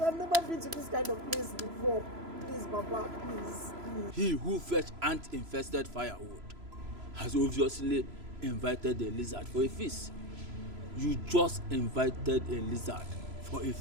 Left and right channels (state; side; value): late; left; 3.0 ms